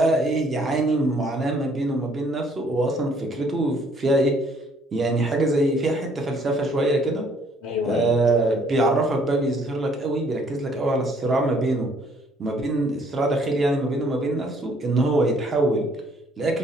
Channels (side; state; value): both; normal; correlation 0.63